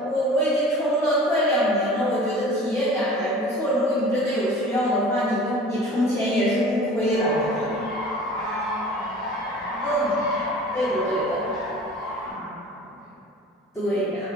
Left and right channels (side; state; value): both; normal; correlation 0.43